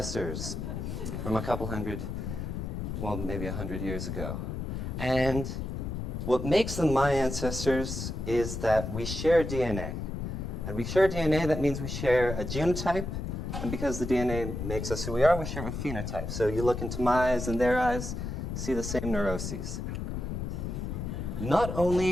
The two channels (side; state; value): left; noise; rumble, 4 dB below the sound